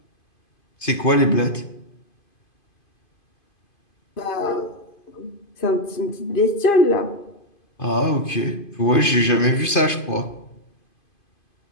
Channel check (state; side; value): late; right; 2.5 ms